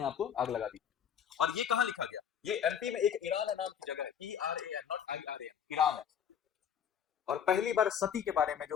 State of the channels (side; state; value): right; quieter; 8.4 dB